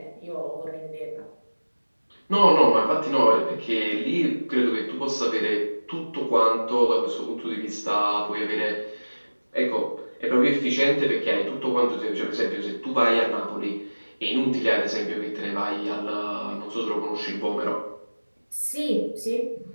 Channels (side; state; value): both; inverted; correlation -1.00